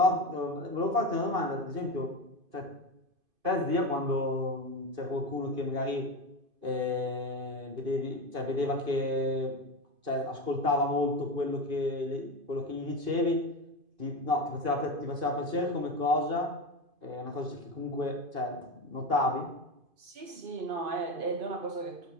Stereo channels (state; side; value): late; left; 2.5 ms